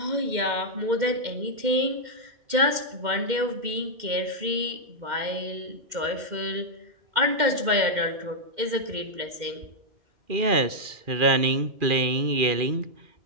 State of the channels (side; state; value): left; late; 2.1 ms